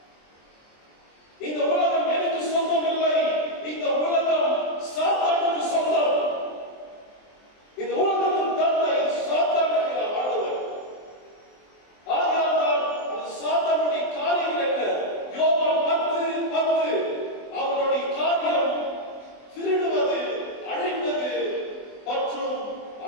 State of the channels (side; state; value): right; late; 23 ms